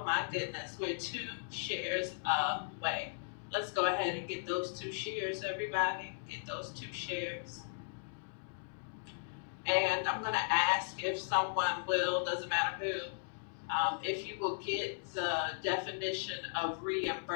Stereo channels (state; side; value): silent; right; digital silence